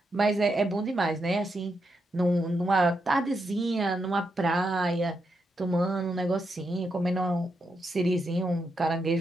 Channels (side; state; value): both; normal; correlation 0.83